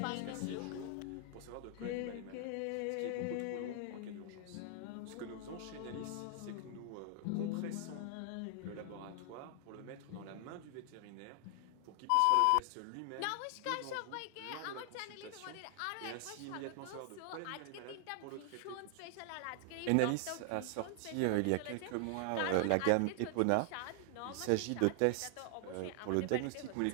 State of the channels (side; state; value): both; different; correlation 0.00